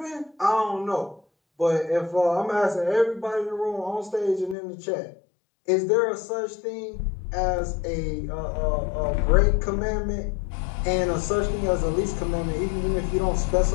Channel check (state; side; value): drops out; right; at 4.5 s